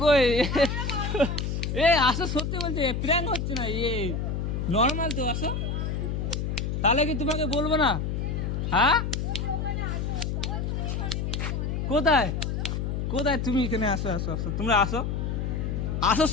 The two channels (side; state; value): left; noise; hum, 1 dB below the sound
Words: আসো, সত্যি বলছে, প্র্যাঙ্ক হচ্ছে না, নর্মাল তো, আসো। তাহলে কি তোমাকে বলবো না? হ্যাঁ কোথায় তুমি? এখানে আসো, তোমরা আসো,